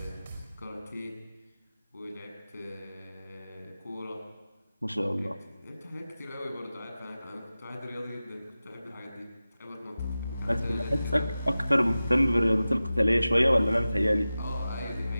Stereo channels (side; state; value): both; inverted; correlation -0.95